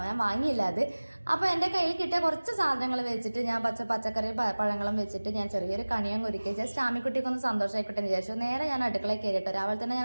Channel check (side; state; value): both; inverted; correlation -1.00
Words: ഞാൻ വാങ്ങിയില്ല അത്. അപ്പോൾ എൻ്റെ കയ്യിൽ കിട്ടിയ കുറച്ച് സാധനങ്ങൾ വെച്ചിട്ട് ഞാൻ പച്ചക്കറി പഴങ്ങളും വെച്ചിട്ട് ഞാൻ ചെറിയൊരു കണിയും ഒരുക്കി. ജസ്റ്റ് ആമിക്കുട്ടിക്കൊന്ന് സന്തോഷമായിക്കോട്ടെ എന്ന് വിചാരിച്ചു. നേരെ ഞാൻ അടുക്കളയിൽ കയറിയിട്ട് രാവിലെ തന്നെ ഞാൻ